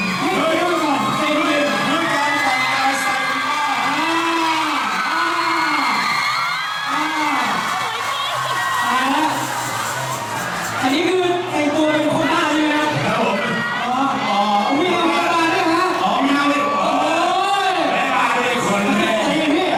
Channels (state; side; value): identical; both; correlation 1.00